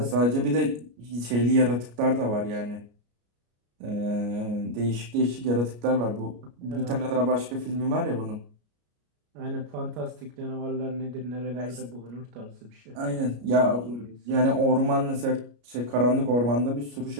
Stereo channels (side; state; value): left; late; 33 ms